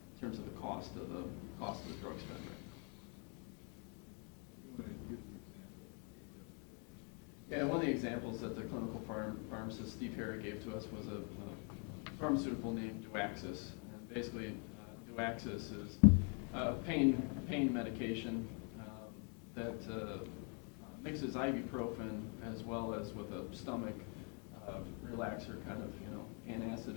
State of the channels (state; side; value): quieter; right; 38.5 dB